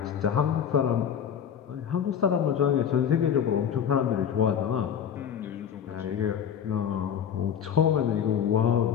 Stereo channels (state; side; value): quieter; right; 8.3 dB